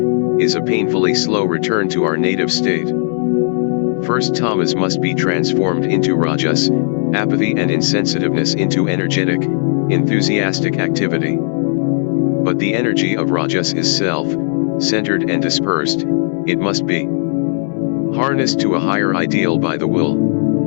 is a painfully slow return to our native state. First, tamas must be transformed into rajas, apathy and insensitiveness into energetic, enthusiastic activity. But the energy of rajas is self-centered and dispersed. It must be harnessed to a higher ideal by the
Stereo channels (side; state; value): right; silent; digital silence